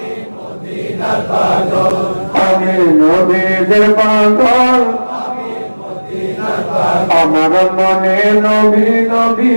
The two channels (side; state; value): both; inverted; correlation -1.00